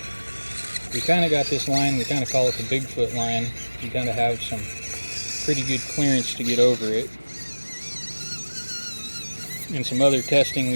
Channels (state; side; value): inverted; both; correlation -1.00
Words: We kind of got this line, we kind of call it the Bigfoot line. You kind of have some pretty good clearance to get over it. In some other testing